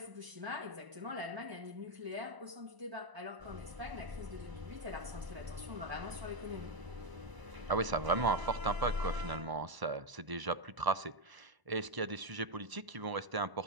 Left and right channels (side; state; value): left; late; 1.0 ms